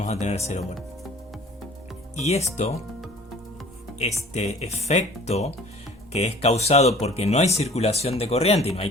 a tener 0 volt. Y este efecto, que es causado porque no hay circulación de corriente y no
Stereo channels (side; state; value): both; normal; correlation 0.48